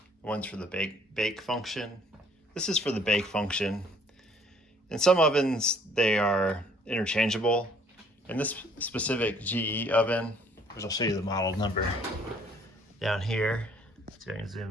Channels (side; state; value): both; normal; correlation 0.60